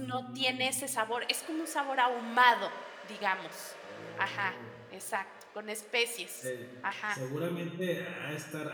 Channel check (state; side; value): identical; both; correlation 1.00